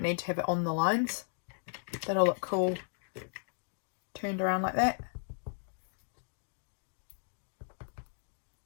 need to have it on the lines. That'll look cool turned around like that.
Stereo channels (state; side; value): silent; right; digital silence